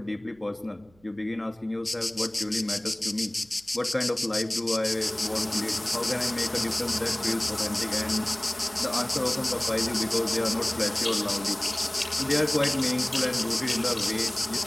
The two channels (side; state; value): right; noise; hum, 30 dB below the sound